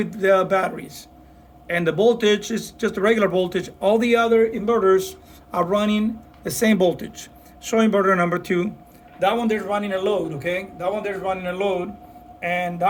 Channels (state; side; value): identical; both; correlation 1.00